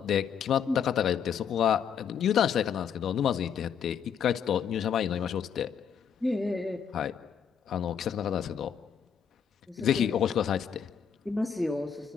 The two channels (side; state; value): right; quieter; 7.6 dB